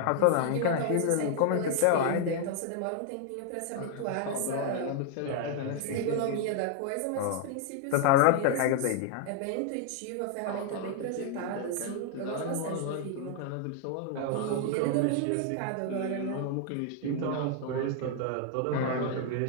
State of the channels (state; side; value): different; both; correlation 0.00